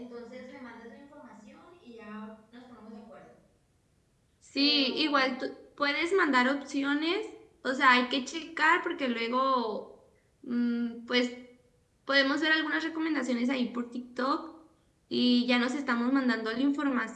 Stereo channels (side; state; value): both; identical; correlation 1.00